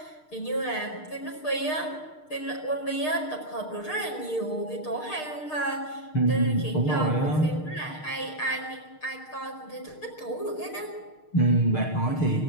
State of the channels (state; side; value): late; right; 6.6 ms